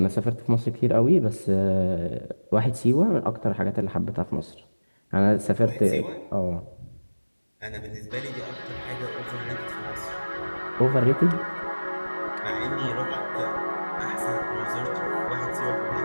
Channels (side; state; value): both; inverted; correlation -1.00